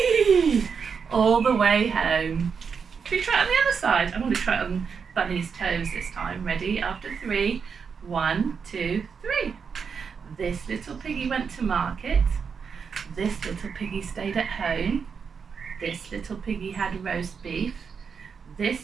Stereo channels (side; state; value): left; quieter; 6.1 dB